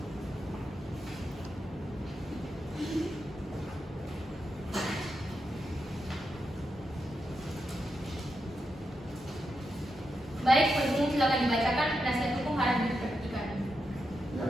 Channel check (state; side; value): normal; both; correlation 0.85